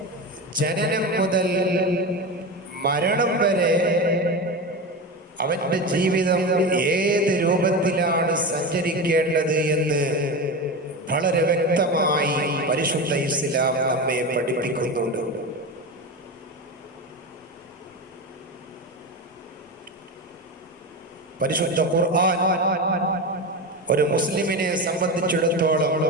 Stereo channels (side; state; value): both; normal; correlation 0.22